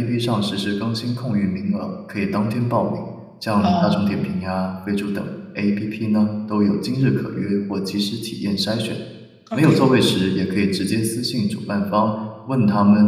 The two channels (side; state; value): both; identical; correlation 1.00